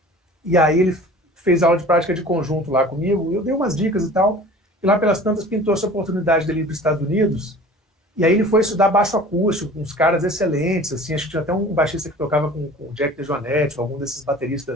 e aí ele fez aula de prática de conjunto lá comigo, eu dei umas dicas e tal, e lá pelas tantas pintou essa oportunidade dele ir para os Estados Unidos, e aí ele foi estudar baixo acústico, com uns caras excelentes, assim, acho que tinha até um baixista que tocava com o Jack DeJohnette, algum desses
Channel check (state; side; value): normal; both; correlation 0.43